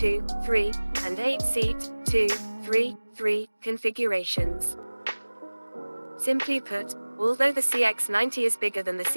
and 8-seat, 2-3-3 configurations. Simply put, although the CX-90 is bigger than the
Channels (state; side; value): inverted; both; correlation -1.00